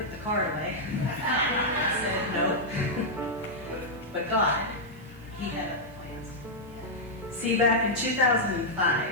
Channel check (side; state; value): right; noise; hiss, 28 dB below the sound